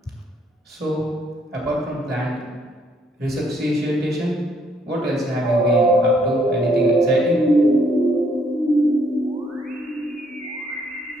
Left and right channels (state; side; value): normal; both; correlation 0.68